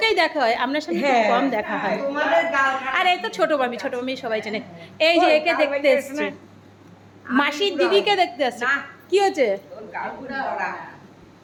দেখা হয়, আপনার সাথে খুব কম দেখা হয়। আর এই তো ছোট মামি, ছোট মামি সবাই চেনে। এই যে একে দেখতে এসছে, মাসির দিদিকে দেখতে আসছে। কি হচ্ছে?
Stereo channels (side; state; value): both; identical; correlation 1.00